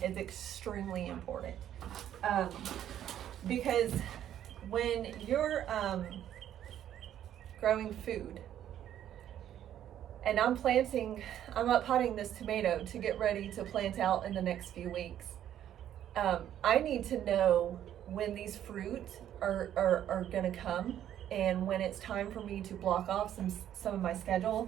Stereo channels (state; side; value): quieter; left; 10.9 dB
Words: is extremely important. Because when you're growing food, and I'm up potting this tomato to get ready to plant out in the next few weeks, I need to know when these fruit are gonna come, and when it's time for me to block off some of my